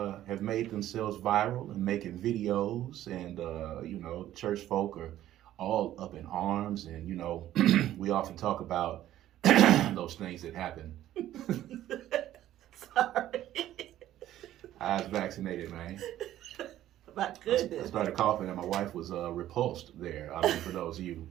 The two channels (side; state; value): left; quieter; 13.1 dB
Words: have made themselves viral and making videos. And, church folk are all up in arms. And, we often talk about those things that happen. Sorry. I was vaccinated, man. My goodness. I started coughing and my wife was repulsed there. I mean, for those of you